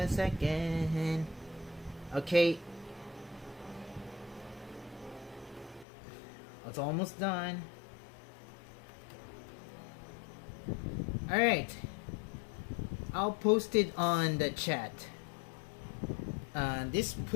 second. Okay. It's almost done. Alright. I'll post it on the chat. This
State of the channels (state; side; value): drops out; right; at 5.9 s